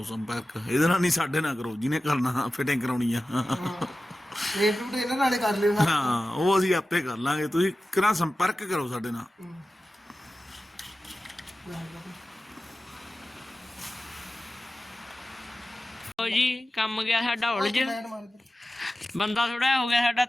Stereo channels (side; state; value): both; normal; correlation 0.95